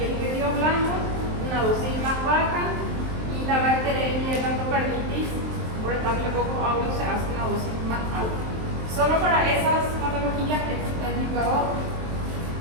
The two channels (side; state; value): left; late; 23 ms